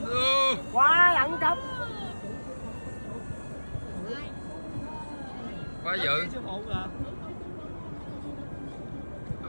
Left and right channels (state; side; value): inverted; both; correlation -1.00